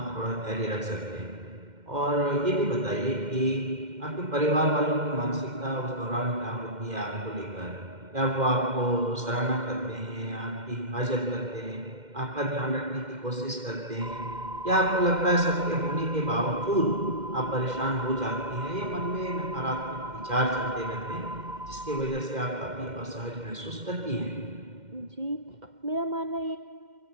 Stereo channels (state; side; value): late; left; 2.1 ms